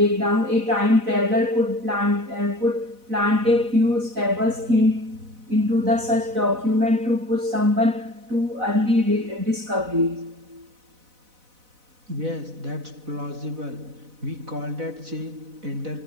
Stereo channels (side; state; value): left; late; 4.0 ms